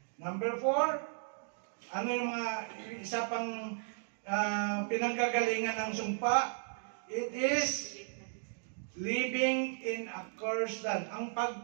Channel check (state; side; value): silent; left; digital silence